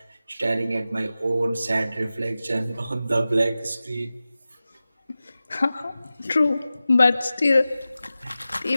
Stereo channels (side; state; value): both; inverted; correlation -0.95